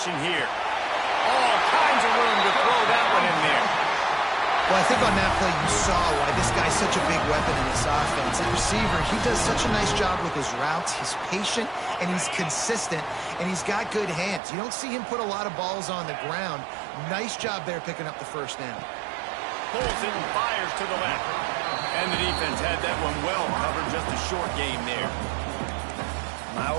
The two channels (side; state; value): left; drops out; at 14.4 s